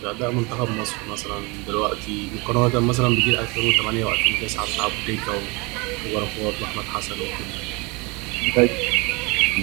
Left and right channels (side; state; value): left; quieter; 27.4 dB